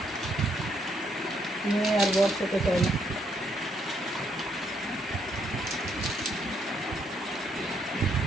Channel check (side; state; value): both; normal; correlation 0.73